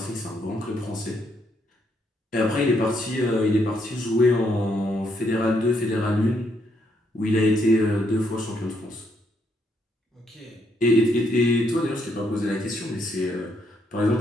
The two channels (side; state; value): both; normal; correlation 0.74